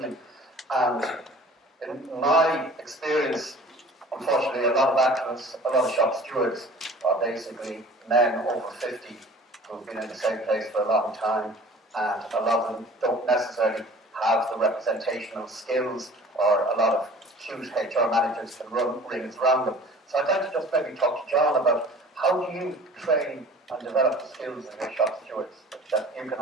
And in my experience, unfortunately, a lot of activists, a lot of shop stewards are basically men over 50 who've been in the same place for a long time, and a lot of them don't necessarily have the representational skills, or a lot of huge HR managers can run rings around them. So I'd like to just maybe talk to John about how do you train and develop the skills of your shop stewards, that you can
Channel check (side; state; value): both; normal; correlation 0.46